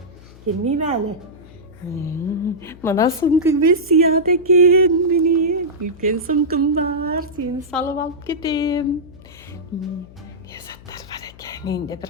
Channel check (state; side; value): noise; left; hum, 21 dB below the sound